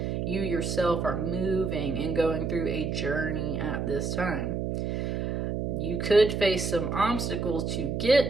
You yourself are moving and going through a journey at this time. You could face some obstacles to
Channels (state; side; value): noise; right; hum, 1 dB below the sound